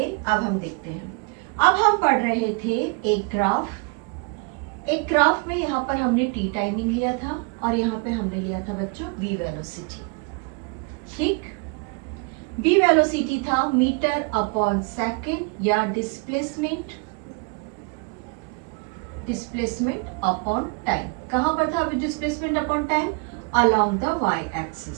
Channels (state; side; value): quieter; left; 31.1 dB